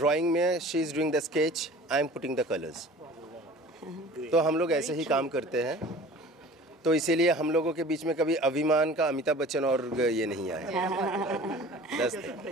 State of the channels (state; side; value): normal; both; correlation 0.43